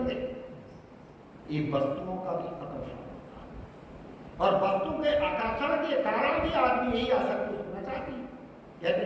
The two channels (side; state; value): both; identical; correlation 1.00